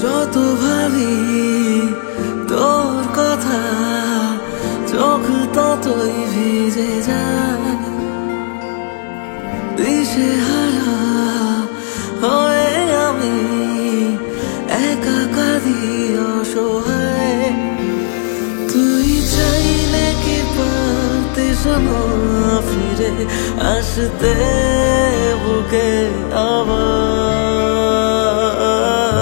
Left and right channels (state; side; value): silent; right; 66 dB below the other